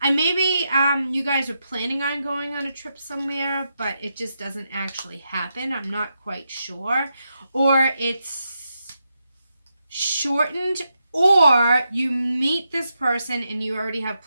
maybe you guys are planning on going on a trip somewhere, but it just doesn't actually happen. I'm not quite sure. Or it's shortened, or you meet this person and you already have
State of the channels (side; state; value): both; inverted; correlation -0.85